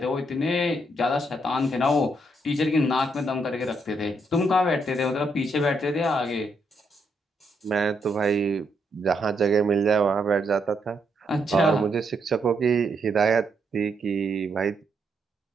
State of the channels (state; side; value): normal; both; correlation 0.77